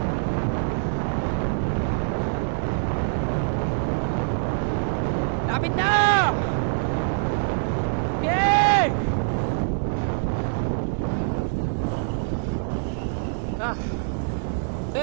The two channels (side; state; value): left; silent; 62 dB below the other